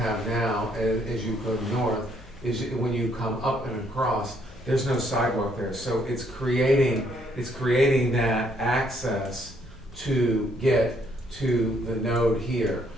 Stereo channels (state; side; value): normal; both; correlation 0.69